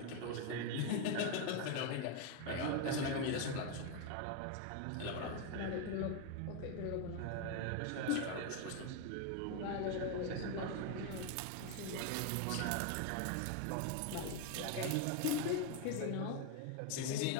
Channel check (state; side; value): different; both; correlation 0.01